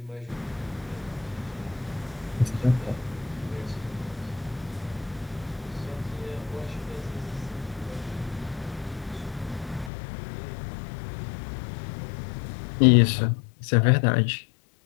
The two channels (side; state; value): right; drops out; at 9.9 s